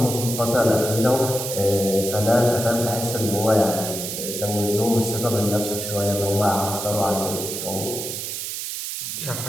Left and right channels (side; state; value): right; noise; hiss, 5 dB below the sound